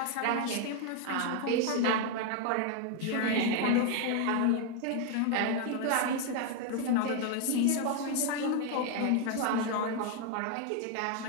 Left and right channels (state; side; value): different; both; correlation 0.01